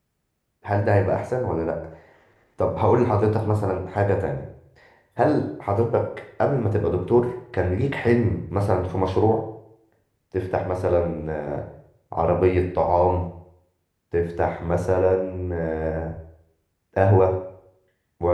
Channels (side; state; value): both; identical; correlation 1.00